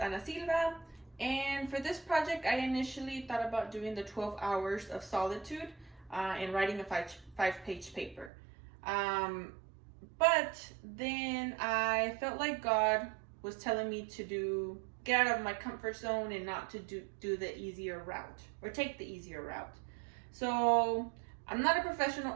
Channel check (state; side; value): drops out; left; at 8.3 s